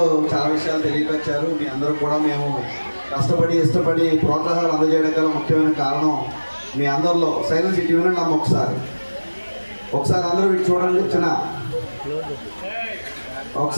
చాలా విషయాలు తెలియపరిచారు. మీ అందరూ కూడా మేము కష్టపడి ఇష్టపడి ప్రోత్సాహాలు అందజేయడం గల ముఖ్యమైన కారణం మీ అందరిలో సైలెన్స్ ఇటు వినండి అమ్మ ఒకసారి అందరూ ఇటు చూడండి.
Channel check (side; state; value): both; inverted; correlation -1.00